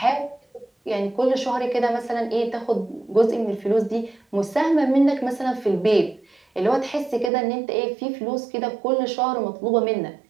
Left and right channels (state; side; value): drops out; left; at 7.3 s